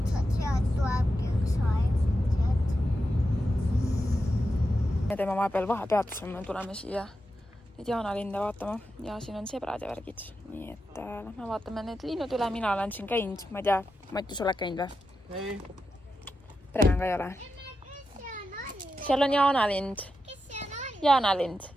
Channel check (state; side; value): normal; both; correlation 0.89